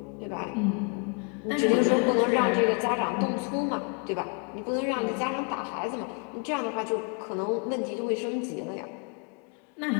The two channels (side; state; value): right; quieter; 38.1 dB